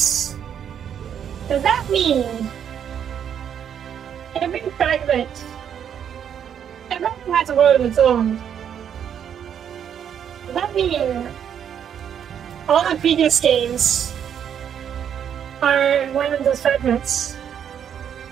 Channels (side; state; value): left; quieter; 8.7 dB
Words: Does that mean every fragment has a world of its own? Does that mean all the previous games are one of those fragments?